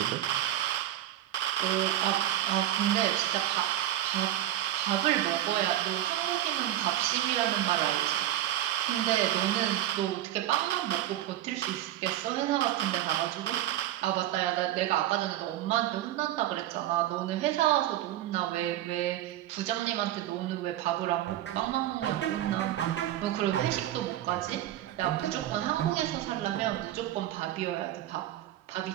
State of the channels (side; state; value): left; quieter; 13.2 dB